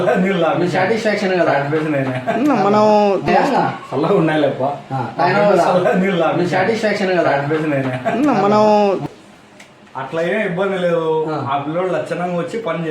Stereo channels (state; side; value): identical; both; correlation 1.00